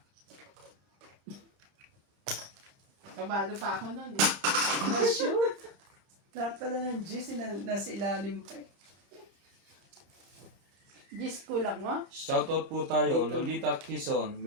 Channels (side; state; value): left; late; 30 ms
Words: Kabado pa ako nun eh. Na-shoot. Lahat pala ng G's nasa ilalim pa eh. Gis kulang mo? Shoutout po tayo. Dito. Lolita Quezon,